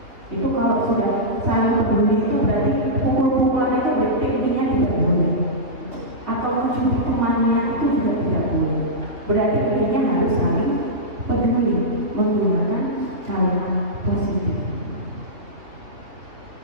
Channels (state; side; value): late; left; 3.1 ms